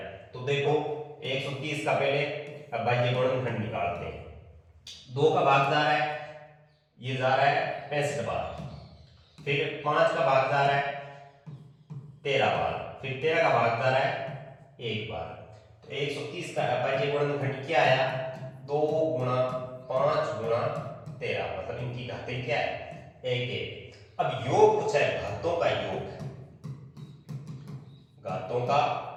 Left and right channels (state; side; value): identical; both; correlation 1.00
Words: तो देखो 130 का पहले अभाज्य गुणनखंड निकालते हैं। 2 का भाग जा रहा है, ये जा रहा है 65 बार, फिर 5 का भाग जा रहा है 13 बार, फिर 13 का भाग जा रहा है 1 बार। तो 130 का अभाज्य गुणनखंड क्या आया, 2 गुणा 5 गुणा 13, मतलब इनकी घातें क्या है, 1 1। अब योग पूछा है, घातों का योग, घातों का